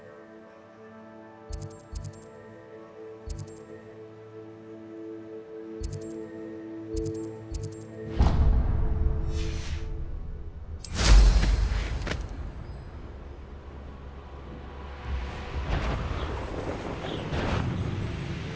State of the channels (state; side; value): identical; both; correlation 1.00